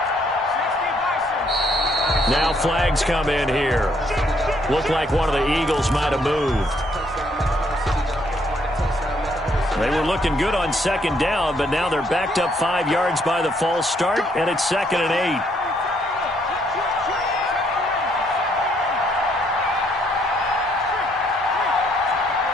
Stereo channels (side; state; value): both; normal; correlation 0.69